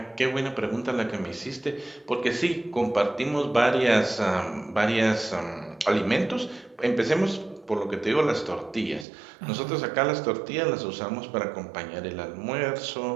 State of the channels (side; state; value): left; drops out; at 9.1 s